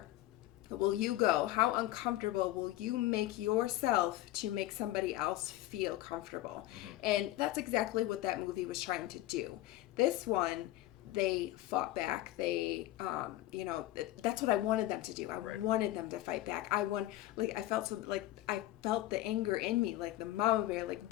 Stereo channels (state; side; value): quieter; right; 15.7 dB